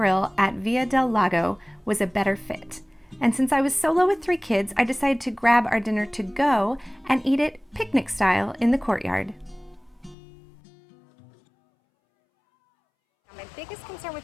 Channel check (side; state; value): right; drops out; at 10.2 s